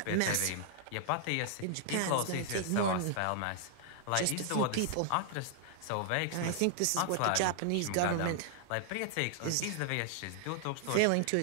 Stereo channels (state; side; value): different; both; correlation -0.01